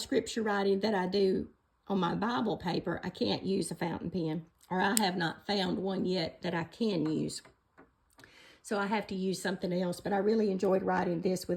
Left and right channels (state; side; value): identical; both; correlation 1.00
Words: writing that I do on my Bible paper, I can't use a fountain pen, or I have not found one yet that I can use. So I have to use something else, but I really enjoyed writing this